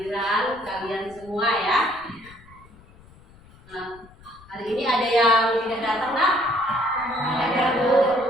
kalian semua ya. Nah, hari ini ada yang tidak datang, nak? Ada Bu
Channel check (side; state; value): left; noise; rumble, 24 dB below the sound